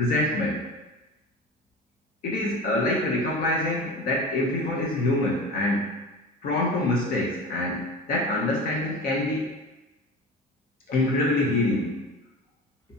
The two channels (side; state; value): both; normal; correlation 0.32